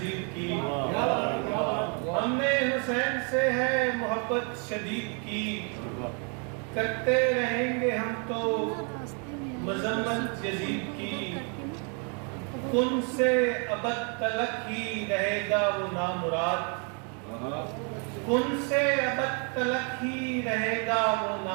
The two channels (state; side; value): quieter; left; 38.0 dB